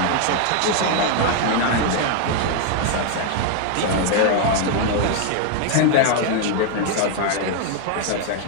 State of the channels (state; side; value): different; both; correlation 0.00